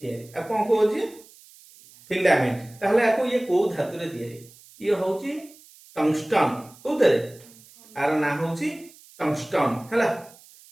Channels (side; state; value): right; noise; hiss, 24 dB below the sound